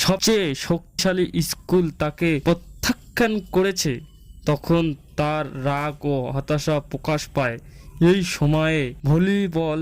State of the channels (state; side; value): identical; both; correlation 1.00